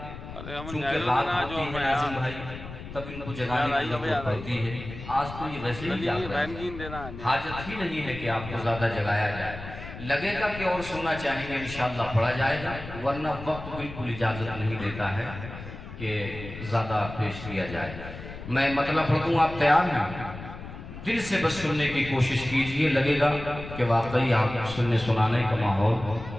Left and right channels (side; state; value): left; noise; rumble, 12 dB below the sound